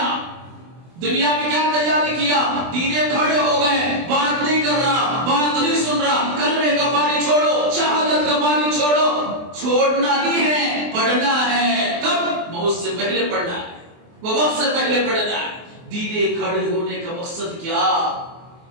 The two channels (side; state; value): left; late; 23 ms